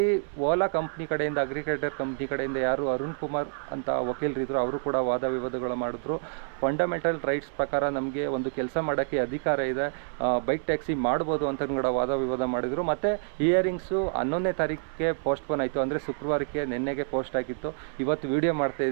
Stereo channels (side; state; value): left; silent; 59 dB below the other